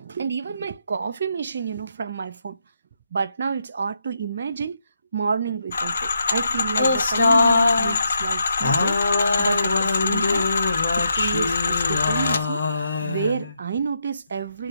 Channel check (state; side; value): inverted; both; correlation -0.80